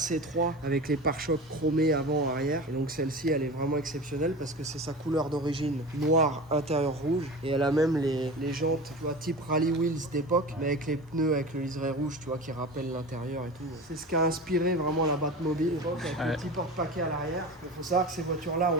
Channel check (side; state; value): both; normal; correlation 0.31